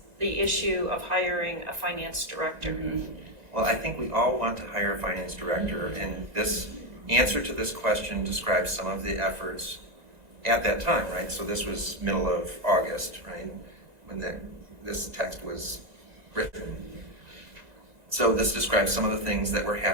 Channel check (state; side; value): late; left; 2.0 ms